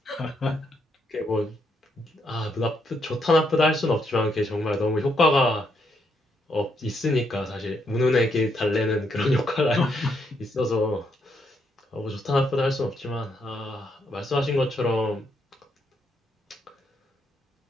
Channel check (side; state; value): both; normal; correlation 0.76